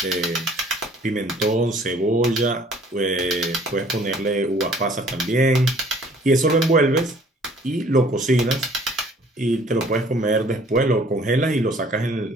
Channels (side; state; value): both; normal; correlation 0.56